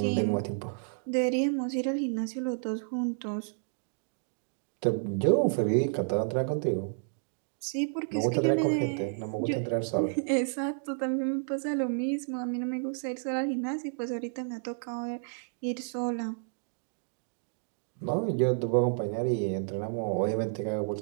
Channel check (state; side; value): silent; left; digital silence